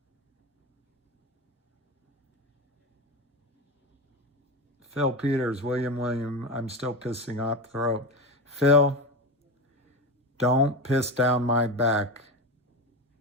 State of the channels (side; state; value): both; normal; correlation 0.20